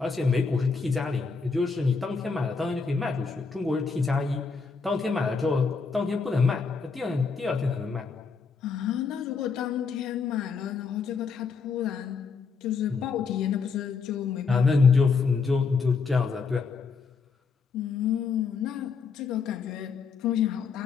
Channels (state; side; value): quieter; right; 5.1 dB